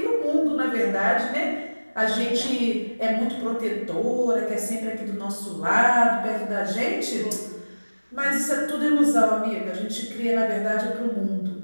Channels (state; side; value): inverted; both; correlation -1.00